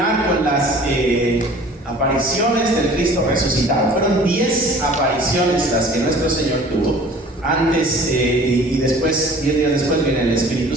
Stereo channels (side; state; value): both; normal; correlation 0.48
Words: con las apariciones del Cristo resucitado. Fueron 10 apariciones las que nuestro Señor tuvo. Antes y después, 10 días después, viene el Espíritu